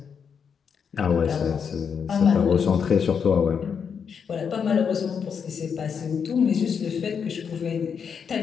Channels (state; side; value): quieter; right; 6.8 dB